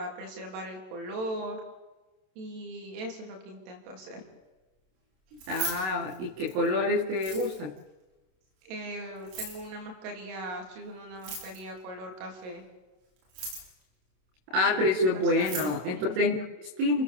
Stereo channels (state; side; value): late; left; 27 ms